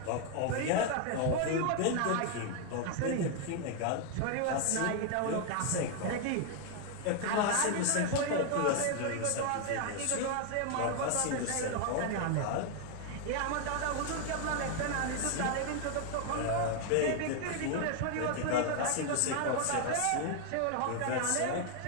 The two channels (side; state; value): both; different; correlation 0.01